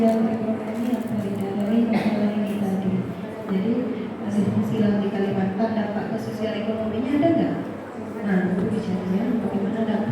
ekonomi apa tidak dari masalah ini tadi. Jadi masih fungsi lahan di Kalimantan, dampak ke sosial ekonominya ada nggak? Nah, itu bicaranya bagaimana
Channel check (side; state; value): both; identical; correlation 1.00